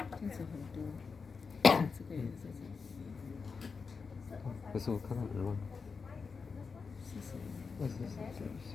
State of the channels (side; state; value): right; quieter; 5.1 dB